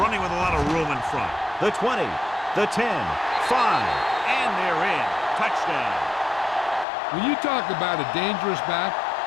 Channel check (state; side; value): drops out; right; at 6.9 s